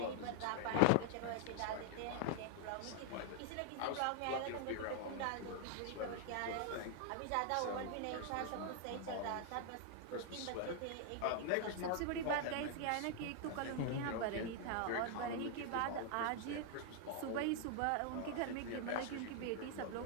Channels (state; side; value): different; both; correlation 0.00